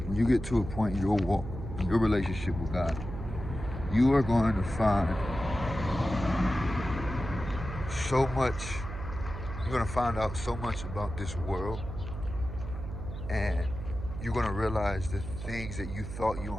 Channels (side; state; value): right; noise; hum, 8 dB below the sound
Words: in your walk, in your relationship with God, you are going to find so much, you're going to find out so much about this world, and you're going to realize the things that you thought you